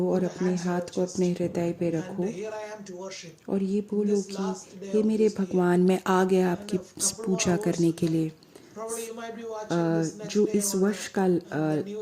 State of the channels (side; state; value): both; identical; correlation 1.00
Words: और अपने हाथ को अपने हृदय पे रखो और ये बोलो कि हे मेरे भगवान, मैं आ गया आपकी पूजा करने के लिए। जो इस वर्ष का